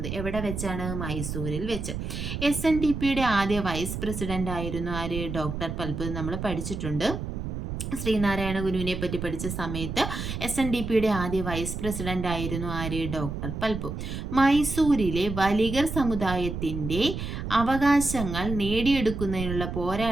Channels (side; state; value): right; noise; rumble, 5 dB below the sound